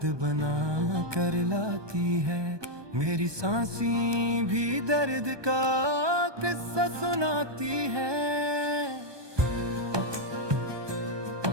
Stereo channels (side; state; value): left; late; 1.2 ms